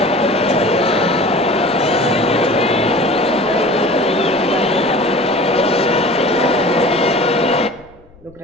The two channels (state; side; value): noise; left; rumble, 28 dB below the sound